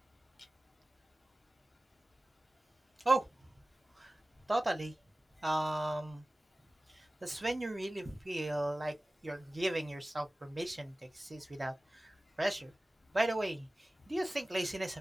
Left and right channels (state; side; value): normal; both; correlation 0.97